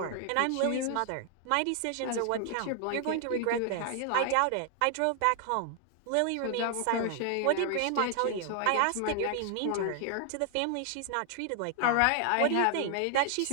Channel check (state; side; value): different; both; correlation 0.00